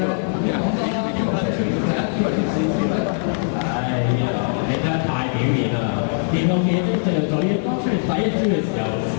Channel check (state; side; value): silent; right; 65 dB below the other